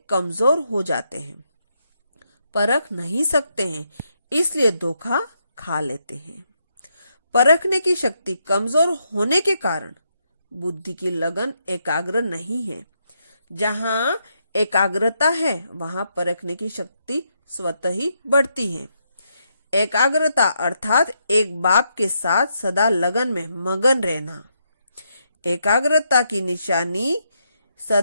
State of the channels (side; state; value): both; inverted; correlation -0.79